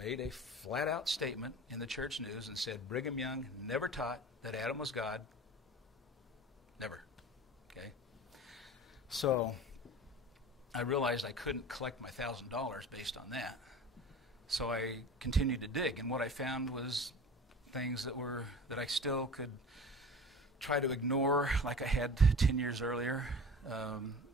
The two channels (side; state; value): both; normal; correlation 0.38